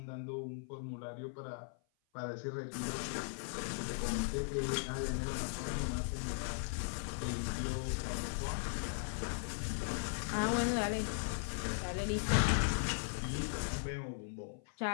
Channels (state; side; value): silent; right; 52 dB below the other